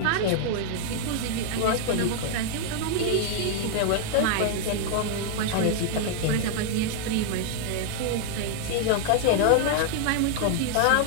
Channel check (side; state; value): both; different; correlation 0.00